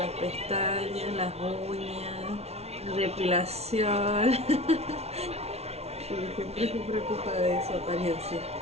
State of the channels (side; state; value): left; late; 0.31 ms